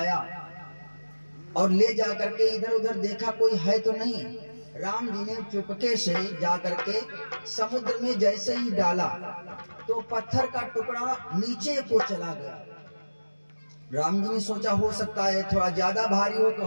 और ले जा करके इधर उधर देखा कोई है तो नहीं। राम जी ने चुपके से जा करके समुद्र में जैसे ही डाला तो पत्थर का टुकड़ा नीचे को चला गया। राम जी ने सोचा हो सकता है थोड़ा ज्यादा भारी हो तो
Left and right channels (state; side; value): inverted; both; correlation -1.00